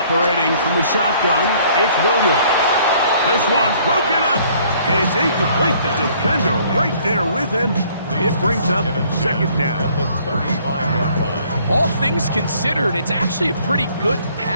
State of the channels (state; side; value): inverted; both; correlation -0.60